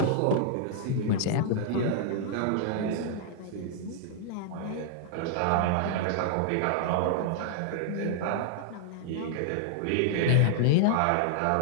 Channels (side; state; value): both; different; correlation -0.01